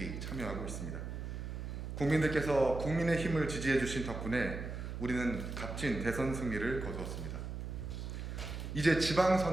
참여하고 있습니다. 국민들께서 국민의 힘을 지지해 주신 덕분에 우리는 값진 대선 승리를 거두었습니다. 이제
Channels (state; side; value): noise; right; hum, 6 dB below the sound